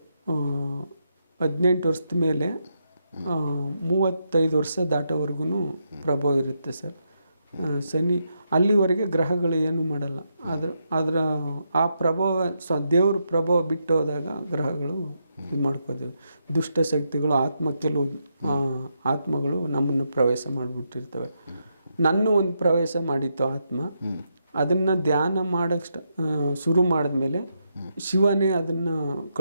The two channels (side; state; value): both; inverted; correlation -0.82